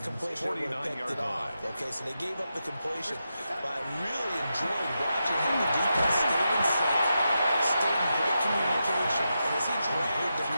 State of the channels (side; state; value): both; inverted; correlation -0.88